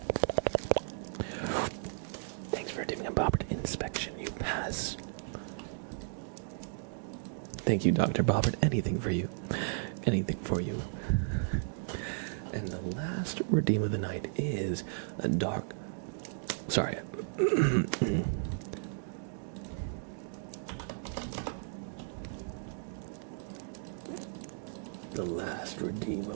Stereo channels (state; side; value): silent; left; digital silence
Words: Thanks for doing a Bobbert inspection. You pass. Thank you, Dr. Bobbert. Anything for you. Anything for you. And the last redeem of the night is a dark... Sorry. The last redeem